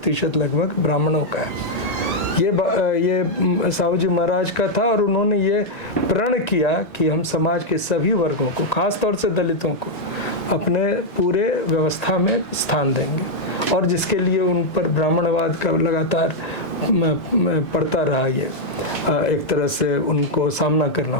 लगभग ब्राह्मणों का है। ये साहू जी महाराज का था और उन्होंने ये प्रण किया कि हम समाज के सभी वर्गों को, खास तौर से दलितों को, अपने पूरे व्यवस्था में स्थान देंगे, और जिसके लिए उन पर ब्राह्मणवाद का लगातार पड़ता रहा, ये एक तरह से उनको सामना करना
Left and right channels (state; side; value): late; right; 1.2 ms